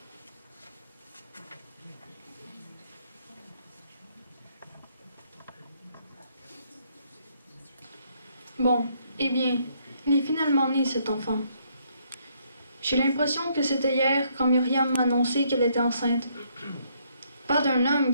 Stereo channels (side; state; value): both; inverted; correlation -0.70